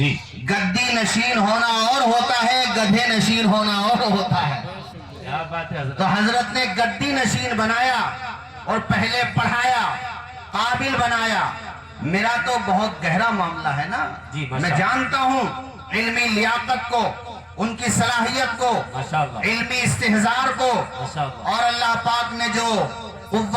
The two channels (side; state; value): both; identical; correlation 1.00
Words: گدی نشین ہونا اور ہوتا ہے، گدھے نشین ہونا اور ہوتا ہے۔ تو حضرت نے گدی نشین بنایا اور پہلے پڑھایا، قابل بنایا۔ میرا تو بہت گہرا معاملہ ہے نا، میں جانتا ہوں علمی لیاقت کو، ان کی صلاحیت کو، علمی استحضار کو، اور اللہ پاک نے جو